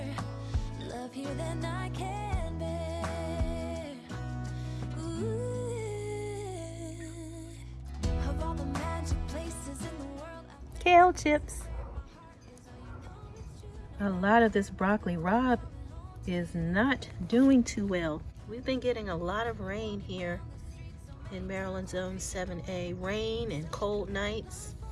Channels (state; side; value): identical; both; correlation 1.00